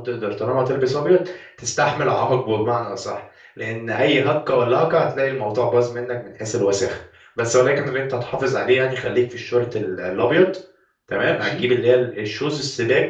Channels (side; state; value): both; identical; correlation 1.00